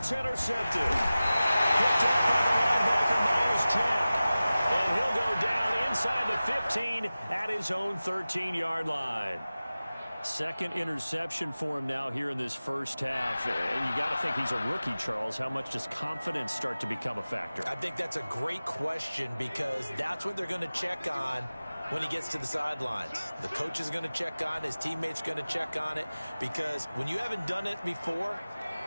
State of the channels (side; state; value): both; inverted; correlation -0.97